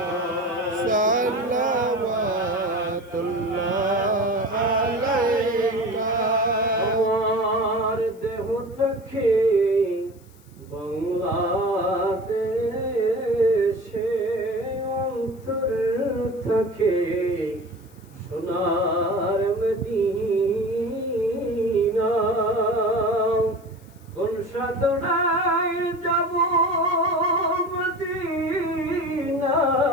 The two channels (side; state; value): left; noise; hiss, 29 dB below the sound